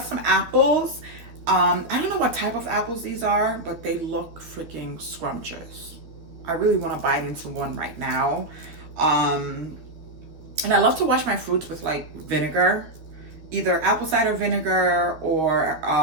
some apples. I don't know what type of apples these are, but they look freaking scrumptious. I really want to bite into one right now. And I love to wash my fruits with like vinegar, either apple cider vinegar or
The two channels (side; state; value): left; late; 12 ms